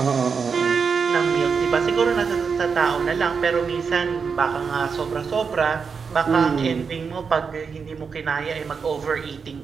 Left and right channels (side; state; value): left; quieter; 5.7 dB